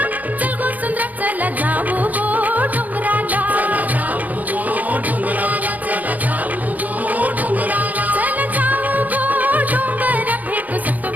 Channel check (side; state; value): left; late; 0.080 ms